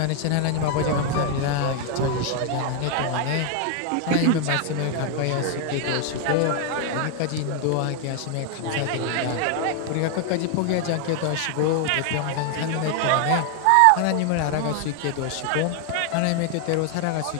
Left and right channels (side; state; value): both; different; correlation 0.00